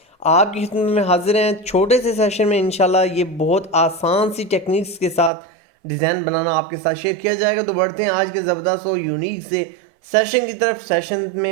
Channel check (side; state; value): left; drops out; at 5.3 s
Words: आपकी खिदमत में हाजिर हैं। छोटे से सेशन में इंशाल्लाह ये बहुत आसान सी टेक्निक्स के साथ डिज़ाइन बनाना आपके साथ शेयर किया जाएगा। तो बढ़ते हैं आज के ज़बरदस्त और यूनिक से सेशन की तरफ। सेशन